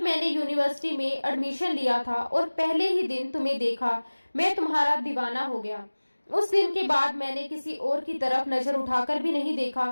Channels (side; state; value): both; inverted; correlation -1.00